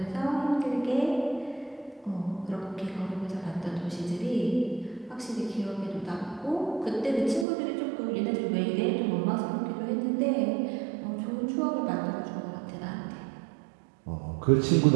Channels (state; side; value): drops out; left; at 7.5 s